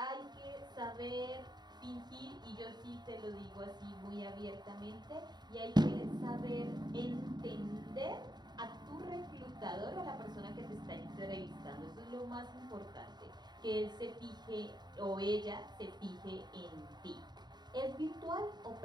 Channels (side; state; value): left; late; 0.20 ms